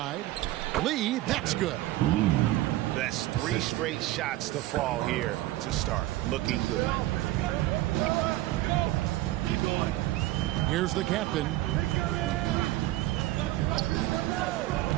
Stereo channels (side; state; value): left; quieter; 16.5 dB